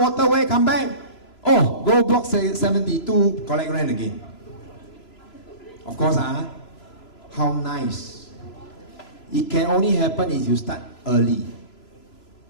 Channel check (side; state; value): right; late; 3.0 ms